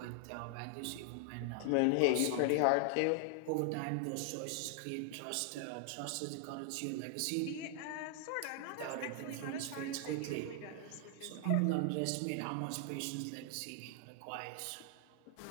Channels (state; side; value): different; both; correlation 0.00